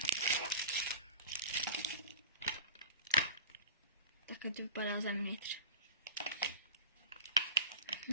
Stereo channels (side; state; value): both; inverted; correlation -0.34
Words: Takhle to vypadá zevnitř.